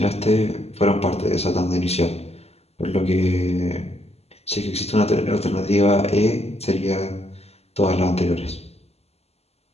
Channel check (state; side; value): late; right; 0.30 ms